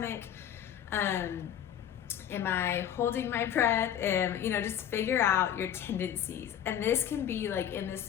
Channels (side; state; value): right; quieter; 9.8 dB